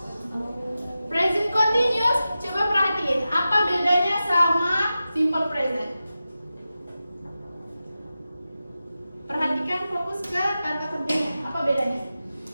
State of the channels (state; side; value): inverted; both; correlation -0.93